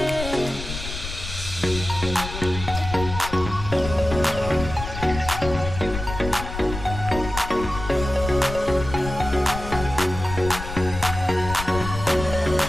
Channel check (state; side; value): noise; left; rumble, 8 dB below the sound